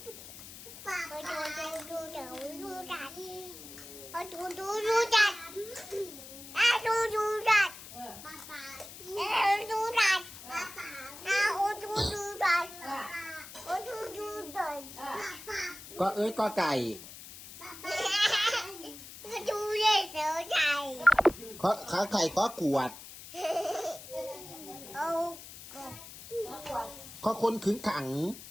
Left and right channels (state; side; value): noise; left; hiss, 14 dB below the sound